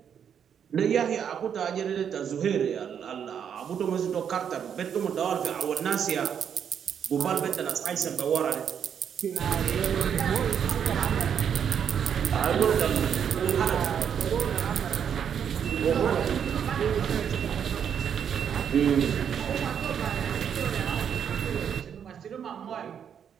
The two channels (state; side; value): quieter; left; 8.1 dB